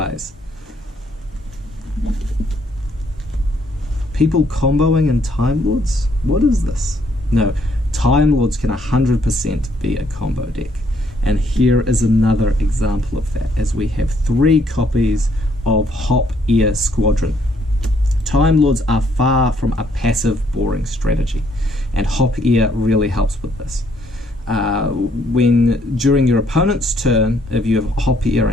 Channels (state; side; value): normal; both; correlation 0.68